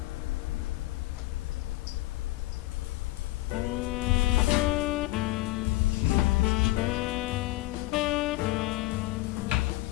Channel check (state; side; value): quieter; right; 18.1 dB